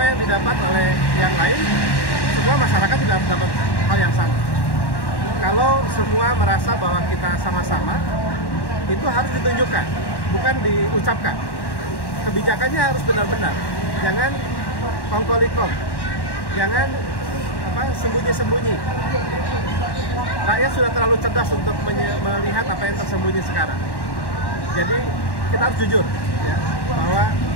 yang didapat oleh yang lain, semua masyarakat tidak dapat hal yang sama. Kalau semua merasa bahwa kita sama-sama, itu harus ditunjukkan, bukan diucapkan. Kebijakannya harus benar-benar. Jangan kongkolikom, jangan sembunyi-sembunyi. Rakyat sudah terlalu cerdas untuk melihat apa yang tersembunyi sekarang. Jadi kita harus jujur, ya, bahwa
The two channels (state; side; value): late; right; 1.1 ms